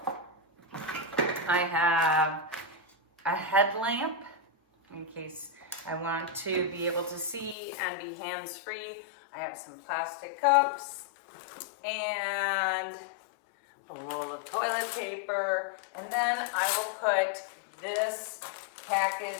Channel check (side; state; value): right; drops out; at 7.6 s